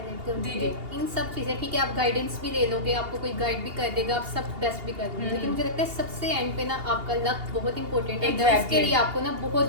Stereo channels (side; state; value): left; late; 2.8 ms